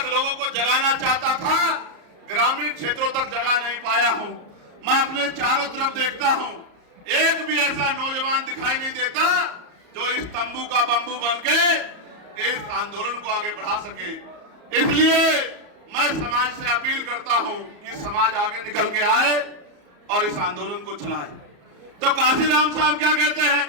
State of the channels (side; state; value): left; late; 34 ms